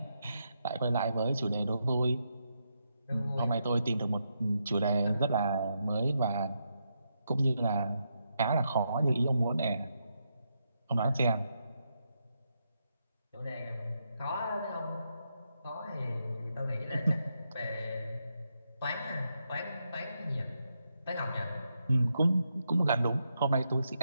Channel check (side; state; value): both; inverted; correlation -0.82